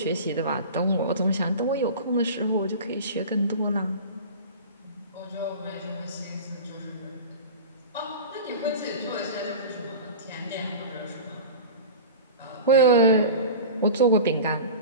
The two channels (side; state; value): both; inverted; correlation -0.33